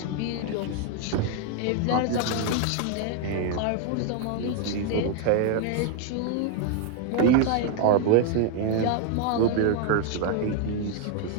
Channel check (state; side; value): different; both; correlation 0.00